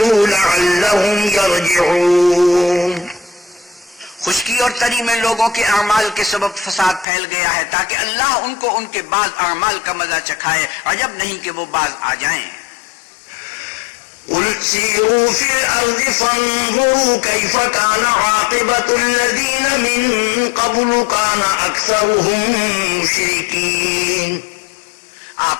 لعلہم یرجعون۔ خشکی اور تری میں لوگوں کے اعمال کے سبب فساد پھیل گیا ہے تاکہ اللہ ان کو ان کے بعض اعمال کا مزہ چکھائے، عجب نہیں کہ وہ باز آ جائیں۔ قل سیروا فی الارض فانظروا کیف کان عاقبۃ الذین من قبل کان اکثرهم مشرکین۔ آپ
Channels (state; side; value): drops out; right; at 7.1 s